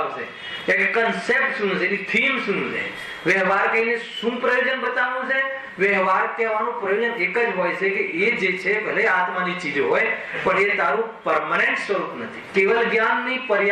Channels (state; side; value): identical; both; correlation 1.00